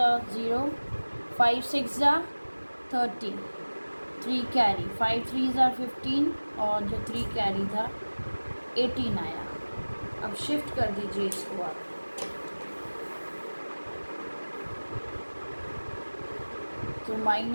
are 0, 5 6 are 30, 3 carry, 5 3s are 15 और जो 3 कैरी था 18 आया. अब शिफ्ट कर दीजिए इसको आप. तो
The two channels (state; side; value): inverted; both; correlation -1.00